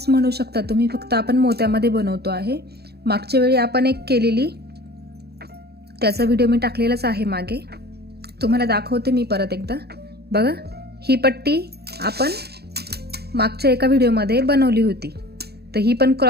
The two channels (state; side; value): late; left; 0.47 ms